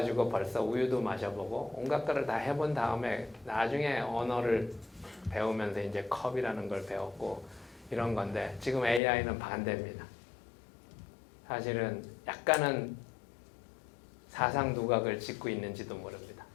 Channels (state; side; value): drops out; right; at 9.0 s